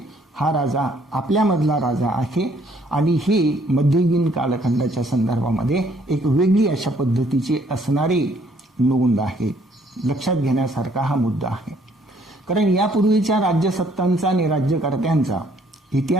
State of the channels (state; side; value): normal; both; correlation 0.64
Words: हा राजा आपल्यामधला राजा आहे आणि ही मध्ययुगीन कालखंडाच्या संदर्भामध्ये एक वेगळी अशा पद्धतीची असणारी नोंद आहे. लक्षात घेण्यासारखा हा मुद्दा आहे. कारण यापूर्वीच्या राज्यसत्तांचा आणि राज्यकर्त्यांचा